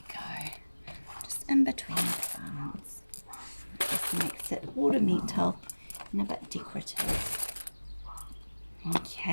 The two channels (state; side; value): inverted; both; correlation -1.00